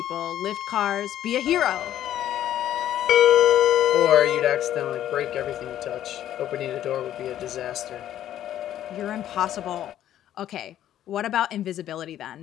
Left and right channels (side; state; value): right; quieter; 11.7 dB